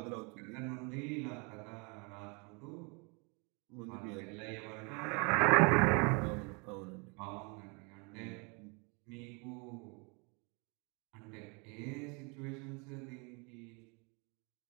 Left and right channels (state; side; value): quieter; left; 32.0 dB